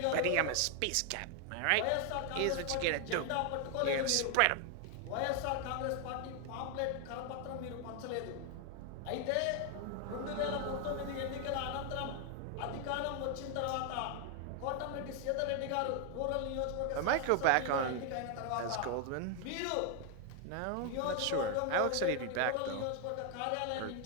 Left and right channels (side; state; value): both; different; correlation 0.00